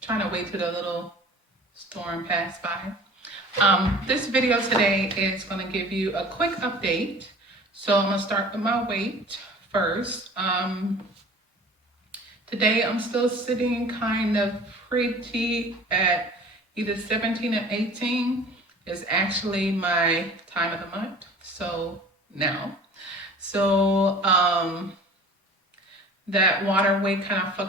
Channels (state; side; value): normal; both; correlation 0.44